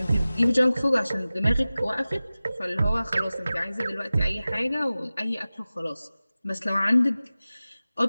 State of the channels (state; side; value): inverted; both; correlation -0.97